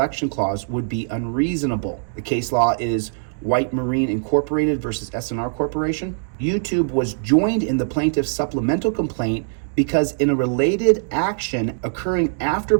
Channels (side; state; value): left; silent; digital silence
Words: clause would be unreasonable. The case law is White Marine Incorporated versus SNR Corporation. YouTube was joined in the plaintiff's supplemental complaint because in a related action occurring after